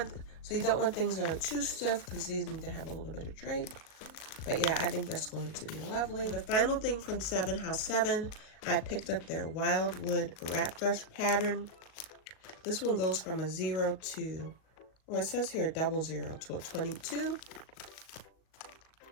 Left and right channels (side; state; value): right; late; 38 ms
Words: things that are too stiff because these need to have a little bit of drape. But yeah, I think that's going to be lovely. The final thing from 7 House 7, I picked up their Wildwood wrap dress pattern. This one goes from a 0 to, or it says here 00 to a 22.